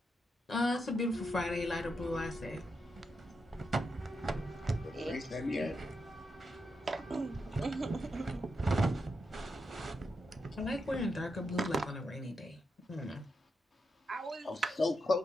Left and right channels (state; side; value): normal; both; correlation 0.84